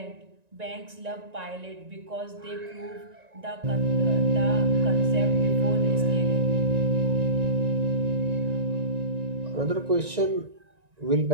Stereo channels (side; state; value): left; late; 1.9 ms